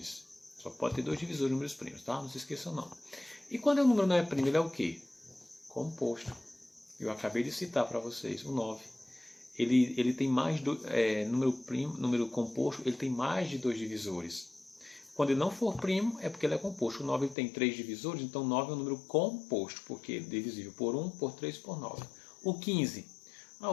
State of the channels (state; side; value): drops out; right; at 17.4 s